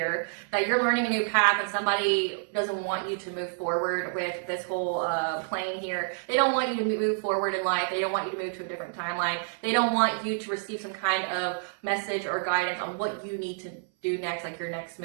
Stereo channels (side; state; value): left; silent; 58 dB below the other